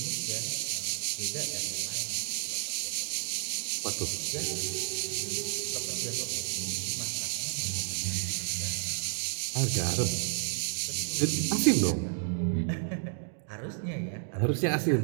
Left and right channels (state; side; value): silent; left; digital silence